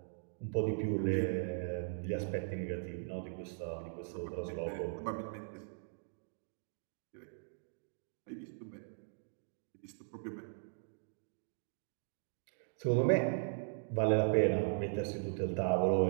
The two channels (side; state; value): left; silent; digital silence